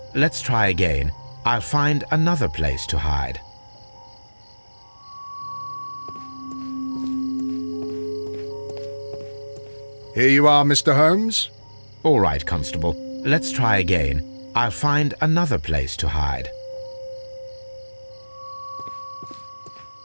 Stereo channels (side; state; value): both; inverted; correlation -1.00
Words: Let's try again. I'll find another place to hide. Here you are, Mr. Holmes. All right, Constable. Let's try again. I'll find another place to hide.